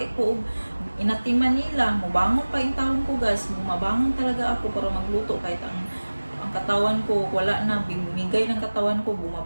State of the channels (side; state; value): both; inverted; correlation -1.00